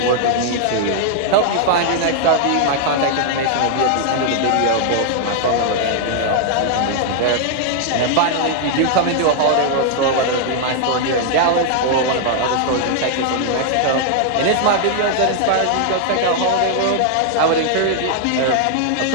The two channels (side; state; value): both; different; correlation 0.00